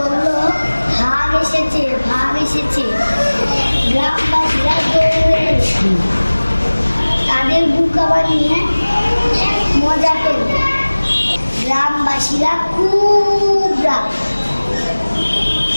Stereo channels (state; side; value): inverted; both; correlation -1.00